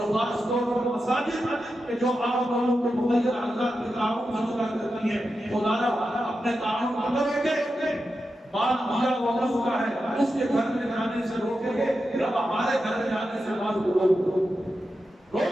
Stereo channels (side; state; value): both; normal; correlation 0.90